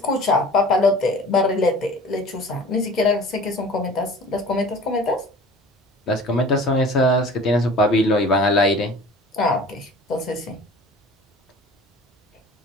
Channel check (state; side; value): normal; both; correlation 0.43